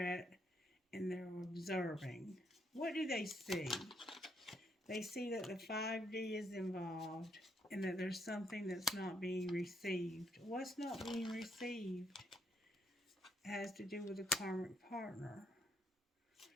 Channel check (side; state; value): both; normal; correlation 0.73